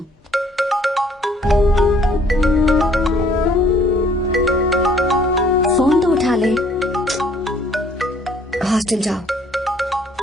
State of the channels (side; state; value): both; normal; correlation 0.60